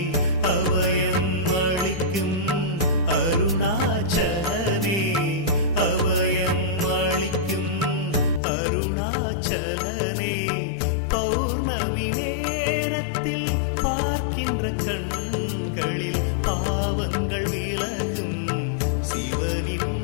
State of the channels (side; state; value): right; drops out; at 8.4 s